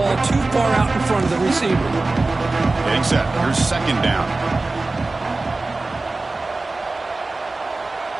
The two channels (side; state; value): left; quieter; 3.3 dB